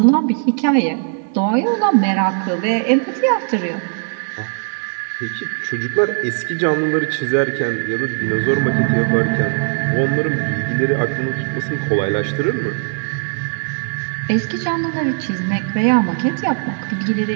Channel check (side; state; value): left; silent; 67 dB below the other